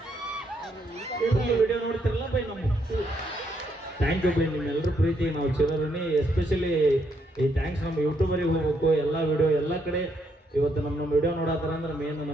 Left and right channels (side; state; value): both; normal; correlation 0.75